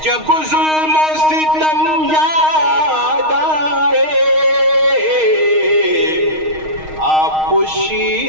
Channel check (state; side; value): late; left; 6.4 ms